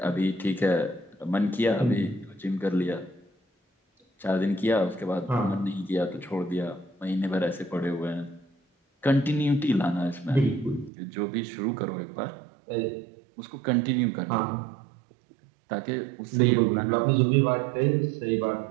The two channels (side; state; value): left; drops out; at 10.9 s